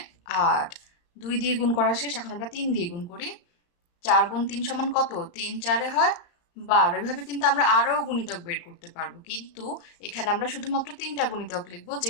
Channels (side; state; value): right; late; 35 ms